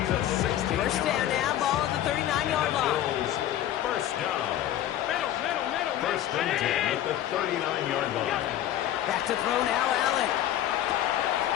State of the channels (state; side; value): quieter; right; 12.1 dB